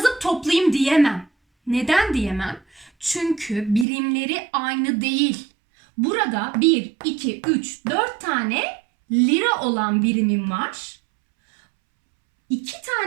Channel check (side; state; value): left; drops out; at 3.9 s